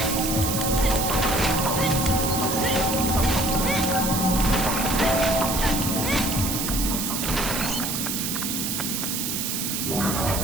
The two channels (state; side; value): noise; right; hiss, 2 dB below the sound